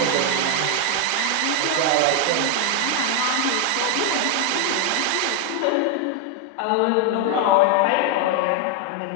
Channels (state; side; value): different; both; correlation 0.01